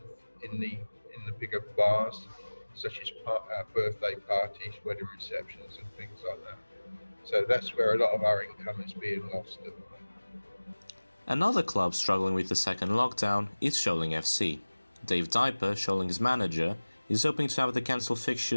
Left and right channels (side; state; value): both; inverted; correlation -1.00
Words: in the bigger bars, such as birthday parties, wedding receptions, and things like that. So that's where a lot of our income is being lost at the moment. Another club struggling with the second lockdown is Sholing FC. Dave Diaper, Sholing's manager, is hoping to have the cancelled